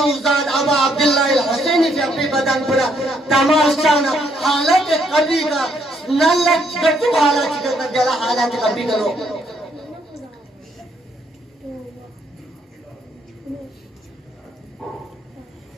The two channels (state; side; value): normal; both; correlation 0.71